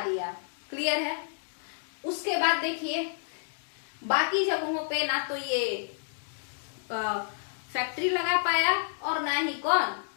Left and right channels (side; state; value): right; silent; digital silence